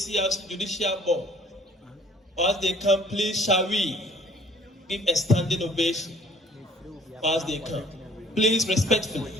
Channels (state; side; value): normal; both; correlation 0.56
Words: Judicial Board. As they come, please, shall we give a standing ovation as they come? Please,